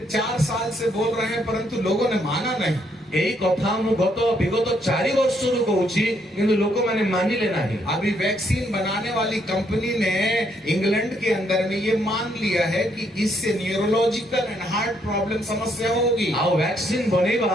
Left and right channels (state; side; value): normal; both; correlation 0.72